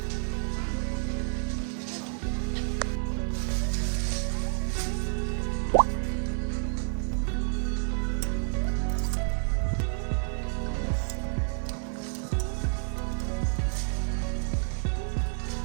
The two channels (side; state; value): left; silent; 58 dB below the other